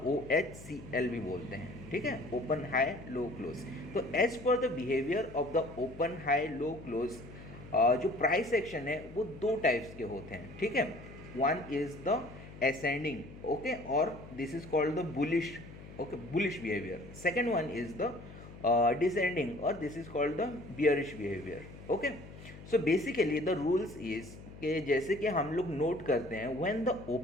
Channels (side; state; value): left; noise; hum, 16 dB below the sound